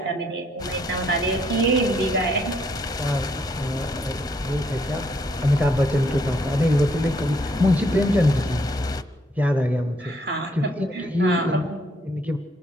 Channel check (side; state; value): both; normal; correlation 0.71